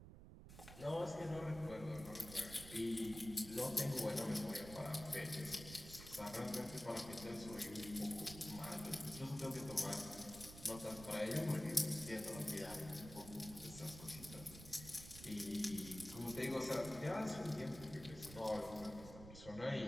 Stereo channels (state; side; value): noise; right; rumble, 13 dB below the sound